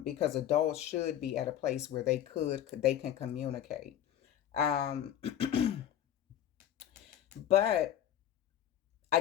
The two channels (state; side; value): quieter; right; 10.8 dB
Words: adults should be at a place where they can communicate. Um, but